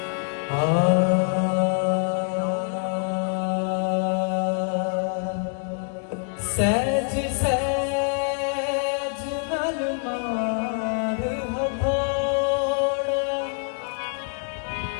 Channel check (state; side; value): silent; right; 62 dB below the other